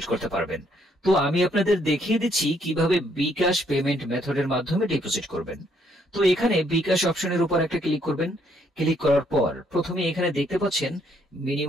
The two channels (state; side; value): normal; both; correlation 0.69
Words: করতে পারবেন। তো আমি আপনাদের দেখিয়ে দিচ্ছি কিভাবে বিকাশ পেমেন্ট মেথডের মাধ্যমে ডিপোজিট করবেন। তো এখানে বিকাশ অপশনের উপর একটা ক্লিক করবেন। ক্লিক করার পর প্রথমে এখানে দেখতে পাচ্ছেন